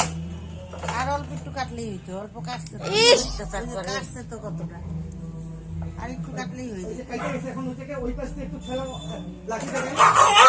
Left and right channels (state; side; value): identical; both; correlation 1.00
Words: আর অল্প একটু কাটলেই হইতো, অল্প কাটছে তো কতটা, আর একটু কাটলেই হইতো।